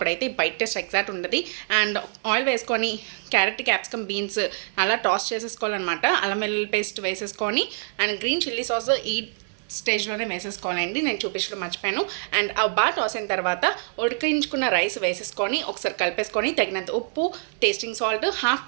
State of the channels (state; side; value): silent; left; 62 dB below the other